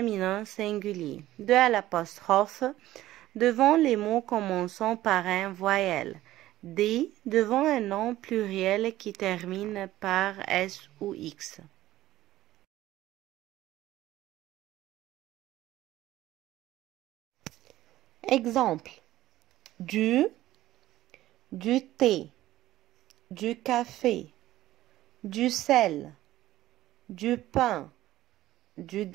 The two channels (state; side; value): quieter; left; 15.1 dB